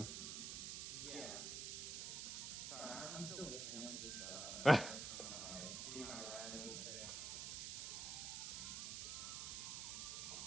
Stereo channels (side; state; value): right; noise; hiss, 3 dB below the sound